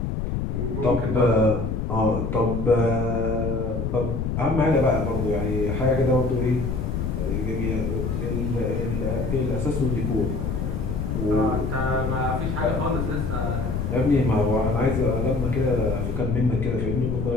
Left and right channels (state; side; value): noise; left; rumble, 2 dB below the sound